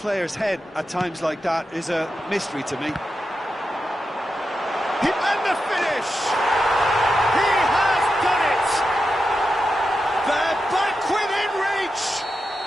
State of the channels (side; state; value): both; normal; correlation 0.89